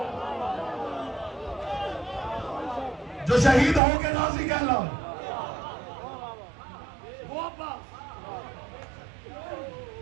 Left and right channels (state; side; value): drops out; left; at 3.8 s